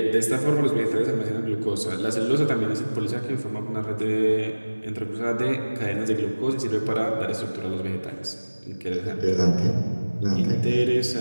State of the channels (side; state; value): both; inverted; correlation -1.00